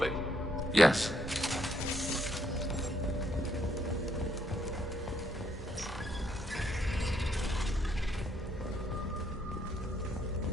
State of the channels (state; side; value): normal; both; correlation 0.72